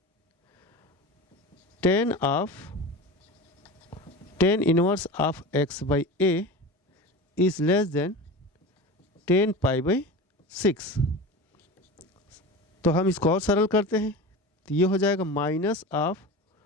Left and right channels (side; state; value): both; normal; correlation 0.30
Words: 10 inverse of x by a is less then 10 pi by 6। तो हम इसको और सरल करते हैं। तो ये हो जाएगा minus of